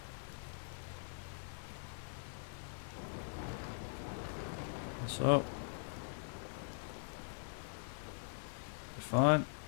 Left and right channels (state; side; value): silent; right; digital silence